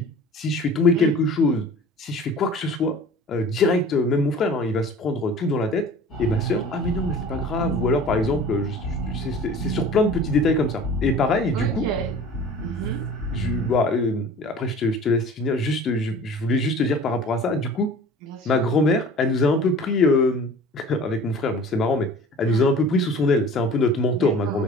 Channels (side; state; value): both; normal; correlation 0.43